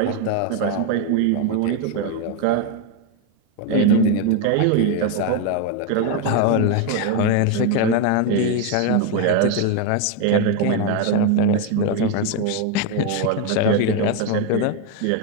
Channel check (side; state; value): both; different; correlation 0.02